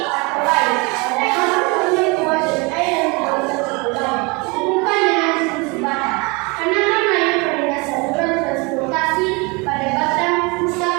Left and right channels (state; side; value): quieter; left; 28.3 dB